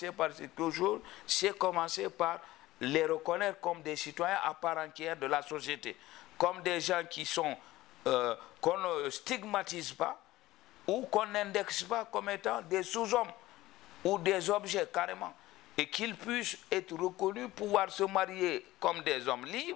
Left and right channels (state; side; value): quieter; right; 17.1 dB